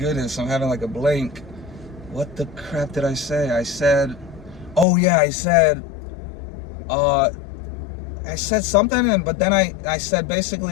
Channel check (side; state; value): right; drops out; at 4.9 s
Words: I'm having like a blank. What the crap did I say? I said, oh yeah, I said something, but then I said